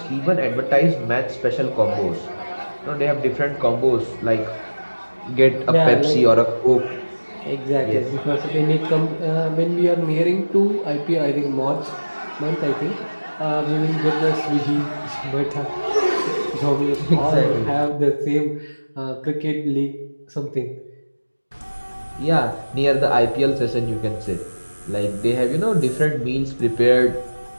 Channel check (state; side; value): inverted; both; correlation -1.00